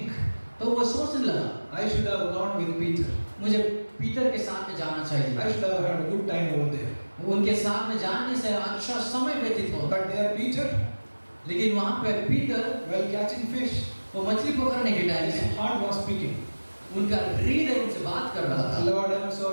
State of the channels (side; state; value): both; inverted; correlation -1.00